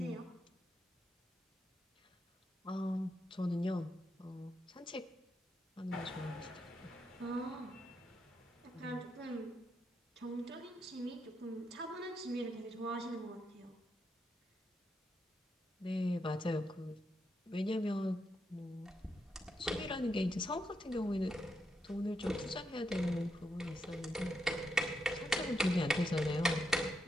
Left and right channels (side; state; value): both; normal; correlation 0.82